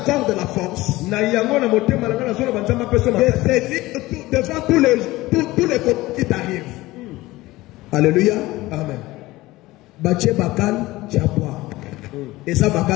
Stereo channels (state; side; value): quieter; right; 18.8 dB